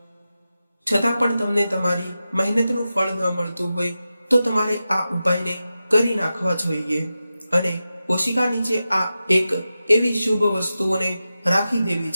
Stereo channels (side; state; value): both; inverted; correlation -0.93